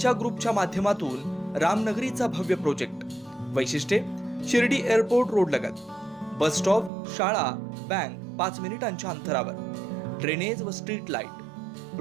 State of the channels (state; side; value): drops out; left; at 6.9 s